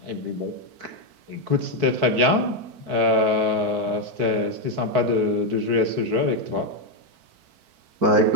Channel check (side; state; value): left; late; 4.5 ms